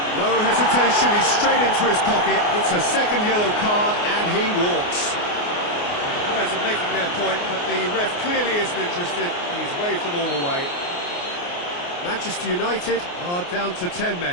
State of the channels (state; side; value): late; right; 28 ms